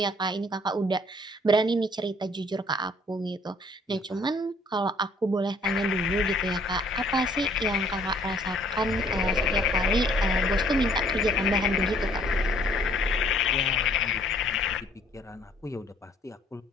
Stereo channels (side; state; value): both; normal; correlation 0.60